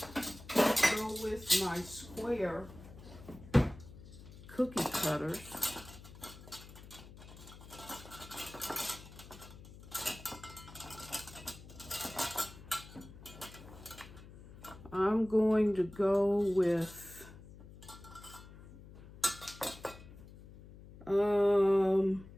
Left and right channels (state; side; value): noise; left; hum, 18 dB below the sound